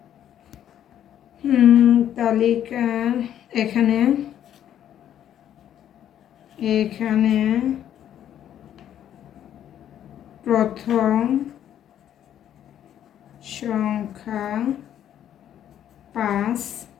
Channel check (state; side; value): quieter; right; 10.6 dB